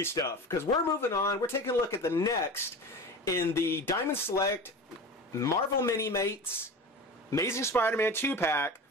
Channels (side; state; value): both; normal; correlation 0.32